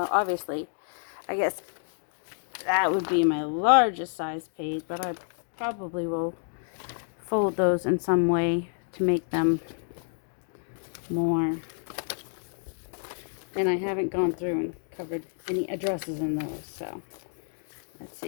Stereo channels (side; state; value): right; silent; 59 dB below the other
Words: obviously, I guess that would be my largest size page, but I probably will fold those in some way to make them more. And I haven't gone through and covered any addresses in those, so let's